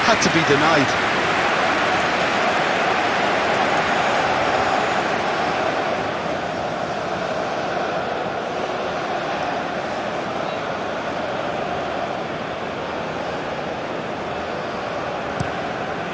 had to be denied.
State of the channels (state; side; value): identical; both; correlation 1.00